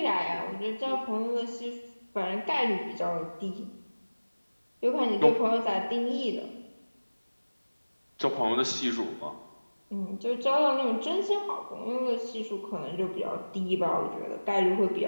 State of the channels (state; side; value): inverted; both; correlation -1.00